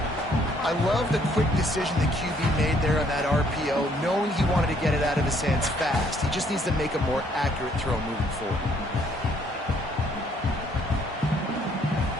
I love the quick decision the QB made there on that RPO, knowing he wanted to get it out of his hands fast. He just needs to make a more accurate throw moving forward.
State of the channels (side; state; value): both; normal; correlation 0.65